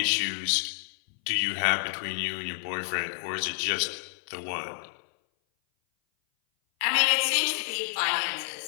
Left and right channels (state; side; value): silent; right; 57 dB below the other